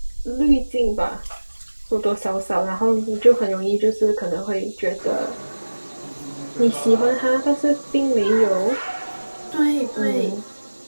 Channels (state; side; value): inverted; both; correlation -1.00